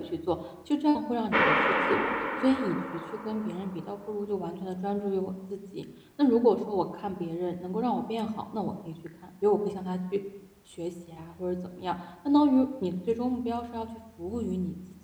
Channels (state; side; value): identical; both; correlation 1.00